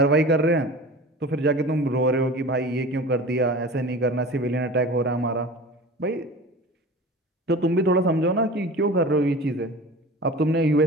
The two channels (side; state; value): both; normal; correlation 0.37